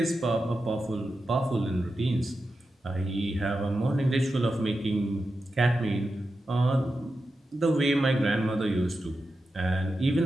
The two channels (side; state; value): both; normal; correlation 0.90